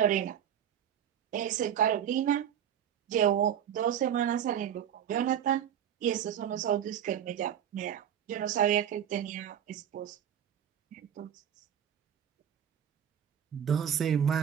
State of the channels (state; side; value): quieter; left; 9.4 dB